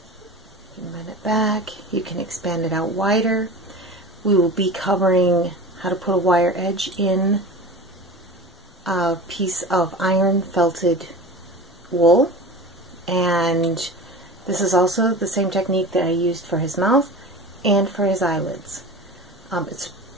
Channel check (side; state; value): both; normal; correlation 0.33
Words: You can bend it back. You can expand it out wider. We will be covering how to put a wire edge in a piece of iron felted wool, and this is also the same technique that I used for his mouth and for his eyelids. It's